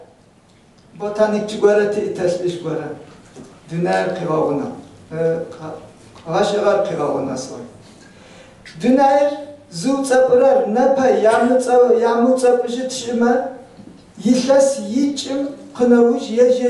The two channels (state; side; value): identical; both; correlation 1.00